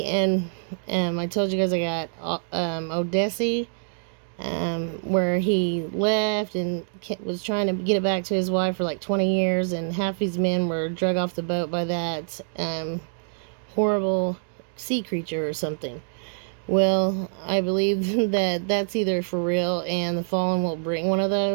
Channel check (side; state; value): left; silent; digital silence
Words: And I told you guys I got Odyssey. Where he left and was trying to get it back to his wife for like 20 years, and half his men were drug off the boat by that horrible sea creature or something. Well, I believe that that's either for real and the Fallen will bring one of